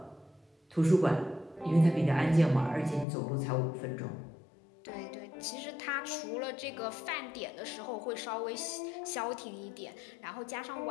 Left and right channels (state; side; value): drops out; right; at 3.1 s